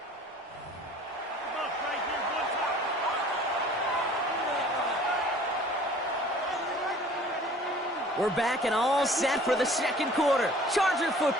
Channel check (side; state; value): both; normal; correlation 0.49